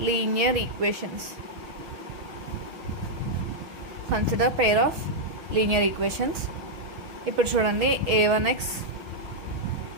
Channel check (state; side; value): late; left; 6.1 ms